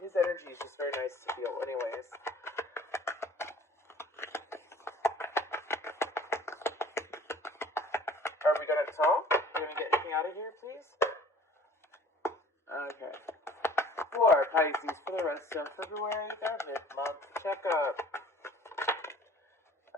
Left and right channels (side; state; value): both; normal; correlation 0.50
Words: his energy is just very nice to feel. Anyways. Are we going to talk? Are we going to get anything out of here, please? Okay. For Pisces, for the rest of February, their mid-month checkup.